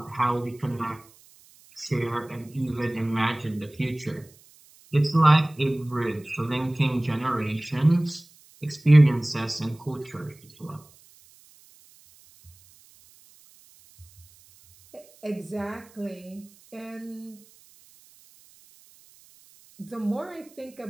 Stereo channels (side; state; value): right; noise; hiss, 27 dB below the sound